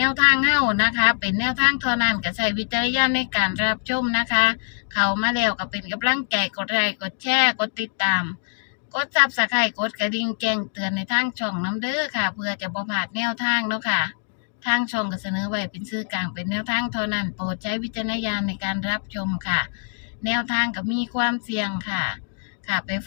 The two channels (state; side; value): silent; right; digital silence